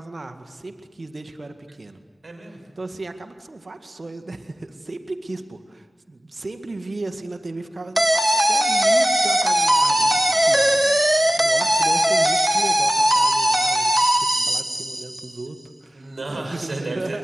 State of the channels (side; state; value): both; normal; correlation 0.96